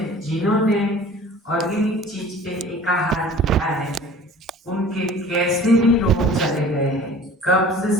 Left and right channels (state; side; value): normal; both; correlation 0.45